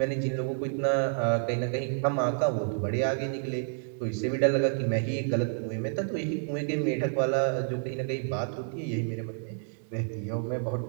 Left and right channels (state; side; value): silent; left; 58 dB below the other